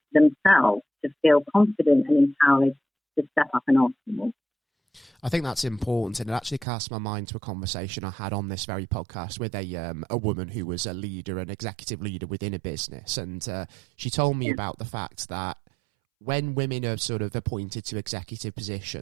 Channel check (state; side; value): drops out; left; at 6.7 s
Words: themselves to feel confident and empowered to step up and ask for more. I think that's important, and it actually cast my mind to a conversation I had on this very podcast with a woman who was a leader, an executive leader within a business, and she told me about the fact that when women are sort of appointed to executive